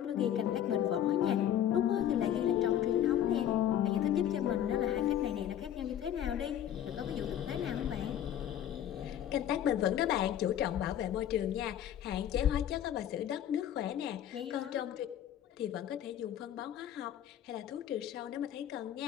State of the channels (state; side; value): quieter; right; 10.6 dB